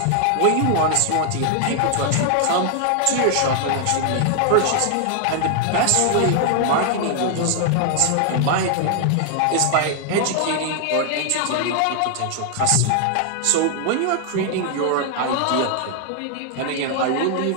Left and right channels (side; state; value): both; different; correlation 0.00